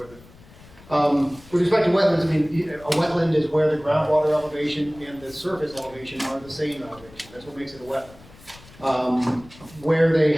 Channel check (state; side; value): noise; left; rumble, 23 dB below the sound